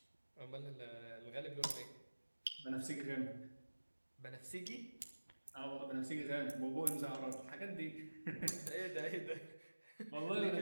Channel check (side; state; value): both; inverted; correlation -1.00